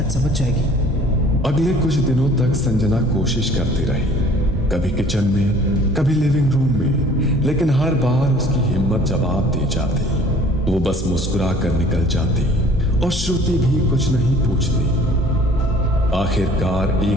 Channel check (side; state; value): both; normal; correlation 0.52